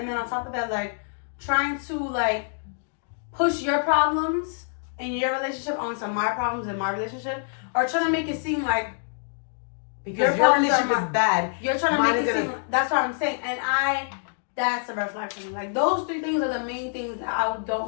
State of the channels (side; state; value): right; silent; digital silence